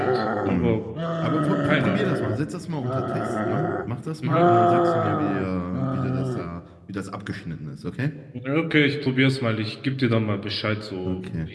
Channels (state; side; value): identical; both; correlation 1.00